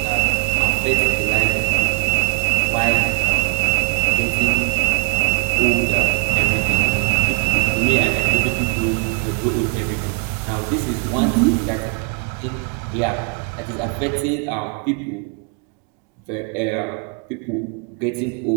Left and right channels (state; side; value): quieter; left; 39.0 dB